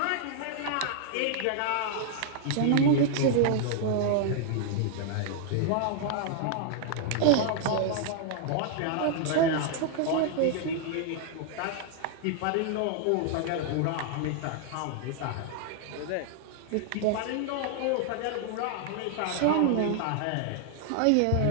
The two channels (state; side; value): different; both; correlation 0.00